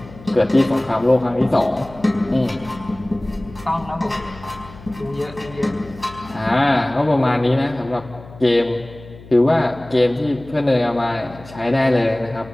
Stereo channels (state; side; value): noise; left; hum, 19 dB below the sound